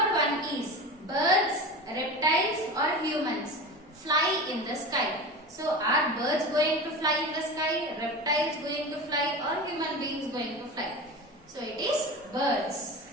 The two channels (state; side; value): normal; both; correlation 0.29